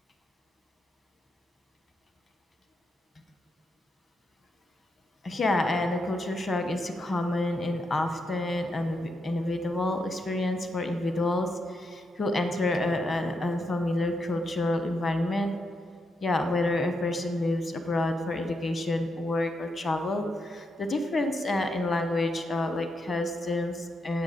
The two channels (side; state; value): both; normal; correlation 0.82